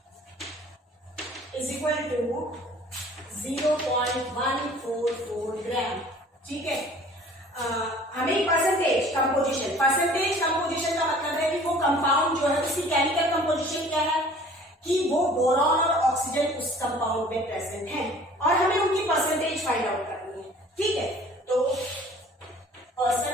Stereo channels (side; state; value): both; normal; correlation 0.50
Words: is equal to 0.144 gram. ठीक है, हमें परसेंटेज कंपोजिशन का मतलब है कि वो कंपाउंड जो है उसकी केमिकल कंपोजिशन क्या है, कि वो बोरॉन और ऑक्सीजन उस कंपाउंड में प्रेजेंट है और हमें उनकी परसेंटेज फाइंड आउट करनी है। ठीक है, तो